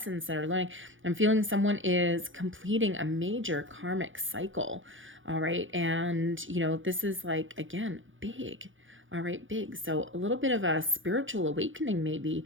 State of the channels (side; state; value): left; late; 0.57 ms